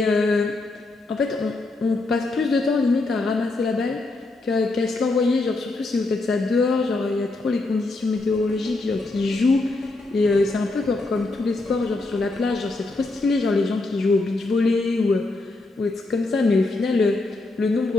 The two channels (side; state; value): right; quieter; 3.2 dB